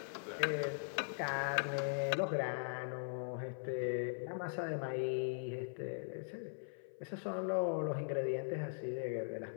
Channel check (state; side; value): silent; right; 51 dB below the other